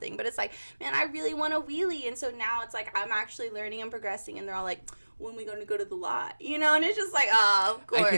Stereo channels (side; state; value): both; inverted; correlation -1.00